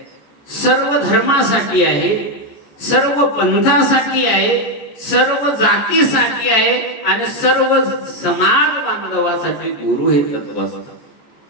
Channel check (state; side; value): late; right; 14 ms